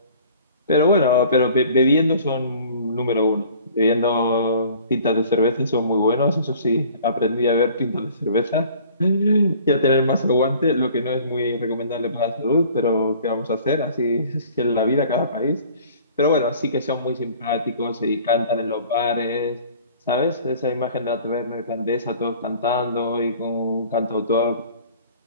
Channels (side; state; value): both; inverted; correlation -0.50